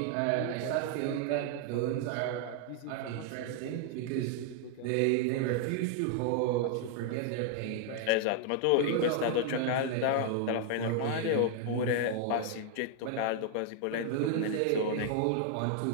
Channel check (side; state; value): both; different; correlation 0.00